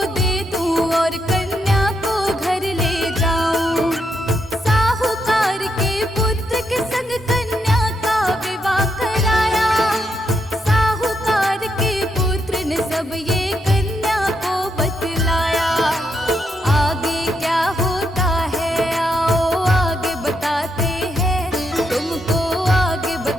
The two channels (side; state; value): both; normal; correlation 0.80